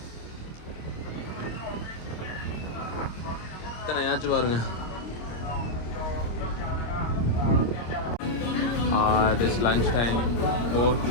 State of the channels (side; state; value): right; late; 26 ms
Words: யாச்சும் பாருங்க, இட் இஸ் லஞ்ச் டைம்.